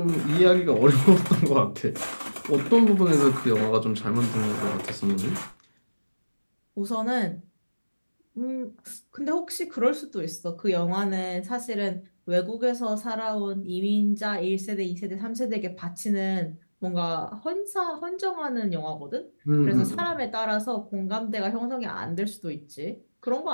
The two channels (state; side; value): inverted; both; correlation -1.00